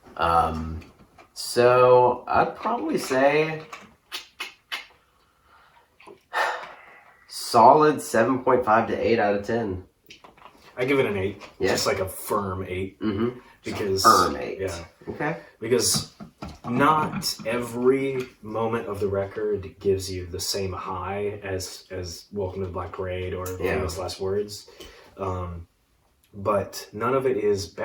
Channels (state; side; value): identical; both; correlation 1.00